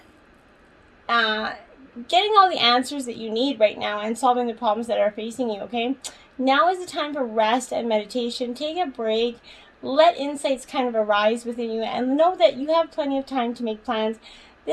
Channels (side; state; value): both; identical; correlation 1.00